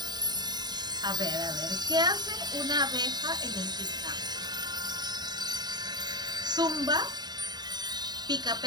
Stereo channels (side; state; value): left; late; 0.20 ms